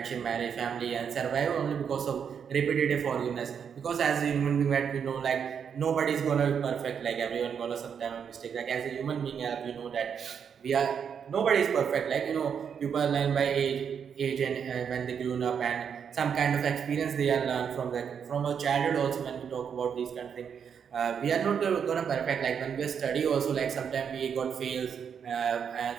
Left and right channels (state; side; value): quieter; left; 7.3 dB